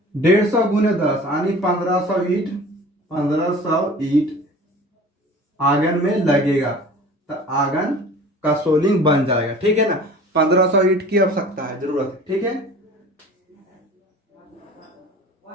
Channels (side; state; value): both; normal; correlation 0.43